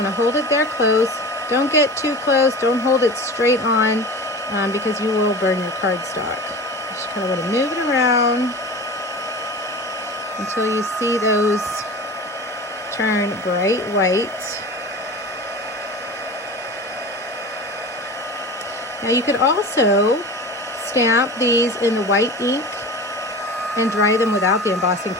hold it there close. Don't get too close, don't hold it straight on because you will burn your cardstock. Just kinda wanna move it around until you see those turn bright white. Now you could also stamp these in the white ink and dry them without the embossing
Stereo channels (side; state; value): both; normal; correlation 0.34